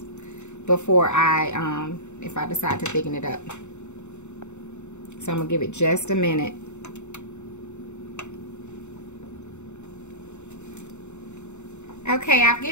before I if I decide to thicken it up. So I'm gonna give it just a minute. Okay, I've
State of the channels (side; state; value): right; late; 0.83 ms